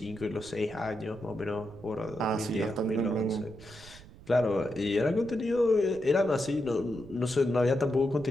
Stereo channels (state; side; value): noise; right; rumble, 19 dB below the sound